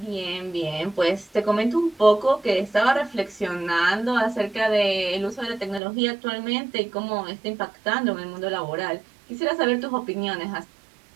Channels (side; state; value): left; drops out; at 5.8 s